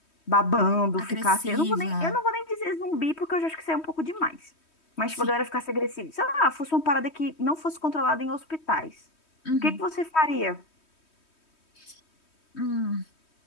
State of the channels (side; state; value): right; late; 3.2 ms